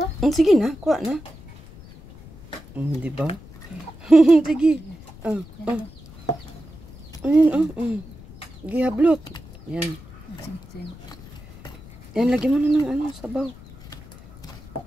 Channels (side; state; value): left; noise; rumble, 19 dB below the sound